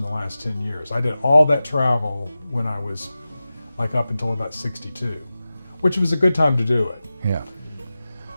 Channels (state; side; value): inverted; both; correlation -0.95